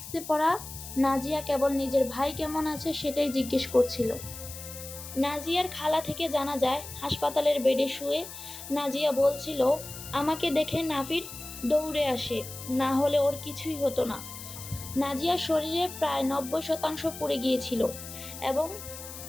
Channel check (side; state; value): left; noise; hiss, 12 dB below the sound